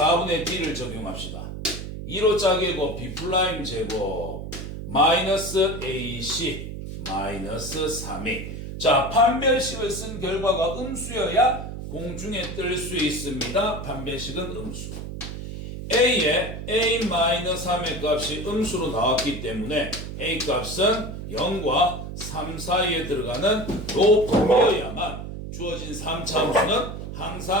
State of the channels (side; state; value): right; noise; hum, 8 dB below the sound